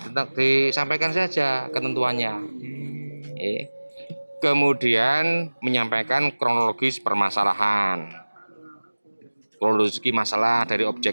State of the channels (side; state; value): both; inverted; correlation -1.00